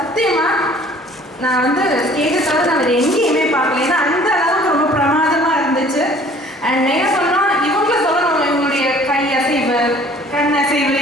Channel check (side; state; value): both; normal; correlation 0.53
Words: நான் வந்து ஸ்டேஜை தவிர நான் வேறு எங்கேயுமே பார்க்கல. ஏன்னா அந்த அளவுக்கு ரொம்ப பிரமாதமாக இருந்துச்சு. அண்ட் என்ன சொன்னால் இவங்களை சொல்லணும், இவங்களுடைய கை அசைவு, கண் அசைவு,